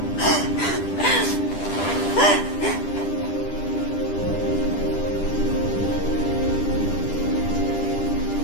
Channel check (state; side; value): late; right; 10 ms